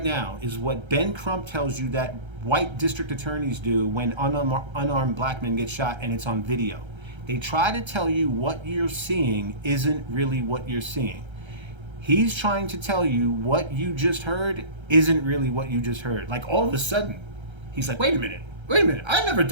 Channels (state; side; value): late; left; 1.3 ms